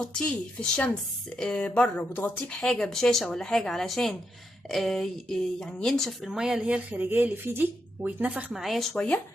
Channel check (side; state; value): both; normal; correlation 0.82